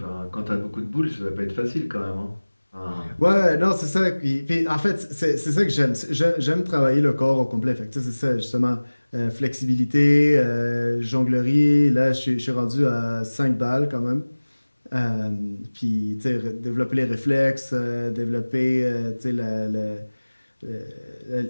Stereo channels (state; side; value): inverted; both; correlation -1.00